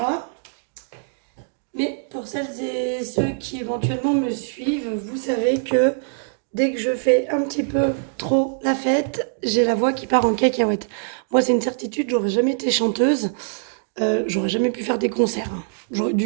Mais pour celles et ceux qui éventuellement me suivent, vous savez que dès que je fais un petit peu trop la fête, j'ai la voix qui part en cacahuète. Moi c'est une certitude, j'aurais jamais été chanteuse. J'aurais jamais pu faire des concerts, hein. J'aurais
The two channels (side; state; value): left; silent; digital silence